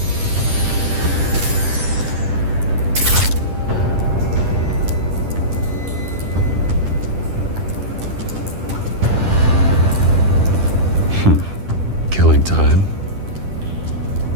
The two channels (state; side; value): late; left; 10 ms